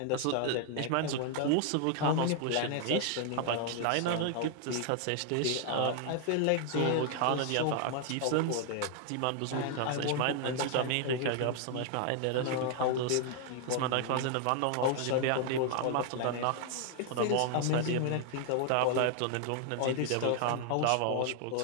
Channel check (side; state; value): both; different; correlation 0.00